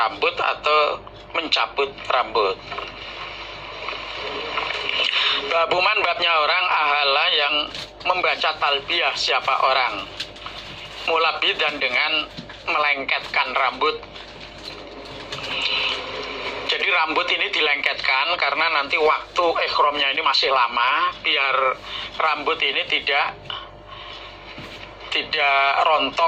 atau mencabut rambut. Babuman babnya orang ahala yang membaca talbiyah siapa orang mulabidan dengan melengketkan rambut. Jadi rambut ini dilengketkan karena nanti waktu ihramnya ini masih lama, biar rambut ini tidak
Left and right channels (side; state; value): both; identical; correlation 1.00